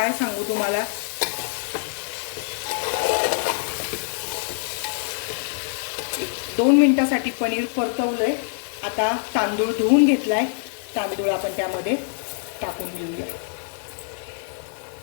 सांगू तुम्हाला. एक 2 मिनिटासाठी पनीर परतवलंय. आता तांदूळ धुवून घेतलाय, तांदूळ आपण त्यामध्ये टाकून घेऊया.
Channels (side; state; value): right; silent; digital silence